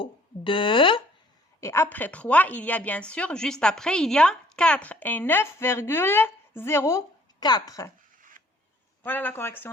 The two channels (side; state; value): both; normal; correlation 0.59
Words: Et après 3, il y a bien sûr, juste après, il y a 4 et 9,04. Voilà la correction